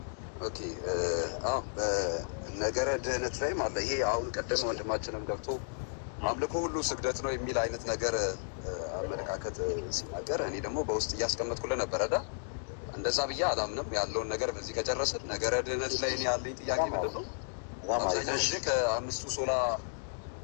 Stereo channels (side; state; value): right; silent; digital silence